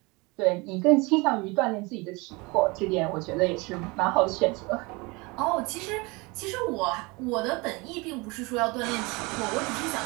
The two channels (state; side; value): quieter; left; 26.0 dB